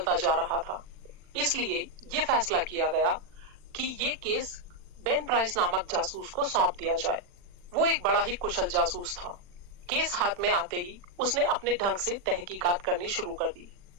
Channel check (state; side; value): late; left; 40 ms